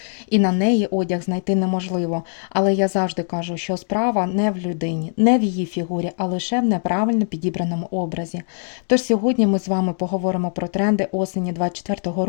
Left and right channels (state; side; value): silent; right; 62 dB below the other